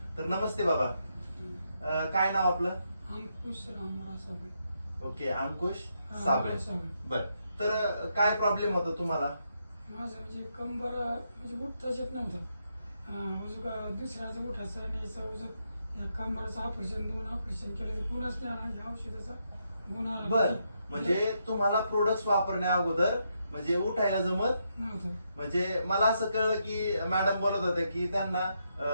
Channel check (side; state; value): both; inverted; correlation -0.80